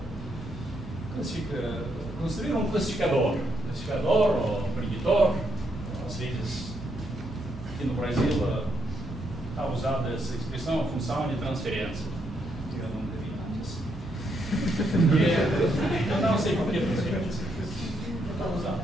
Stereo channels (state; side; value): normal; both; correlation 0.77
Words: Construir um classificador ou preditor, às vezes aqui no Brasil está usada essa expressão, a função de transferência. Eu não devia antes. Eu não sei por que transferência. Está usada.